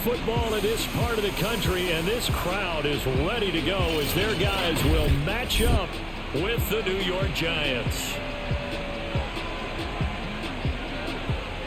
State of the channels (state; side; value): identical; both; correlation 1.00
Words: in this part of the country, and this crowd is ready to go as their guys will match up with the New York Giants.